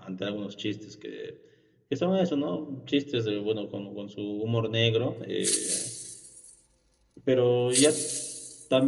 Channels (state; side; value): identical; both; correlation 1.00